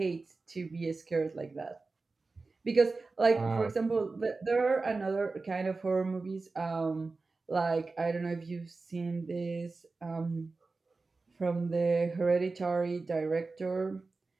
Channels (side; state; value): left; quieter; 3.8 dB